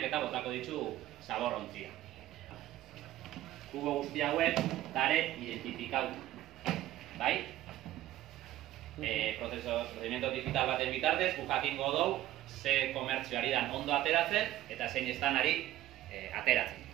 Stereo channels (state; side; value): quieter; left; 14.4 dB